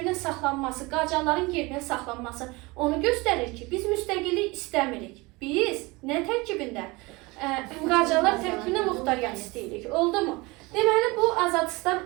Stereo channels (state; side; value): quieter; left; 24.0 dB